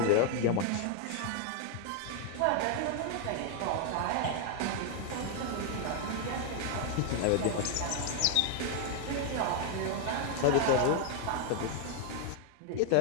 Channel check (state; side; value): different; both; correlation 0.00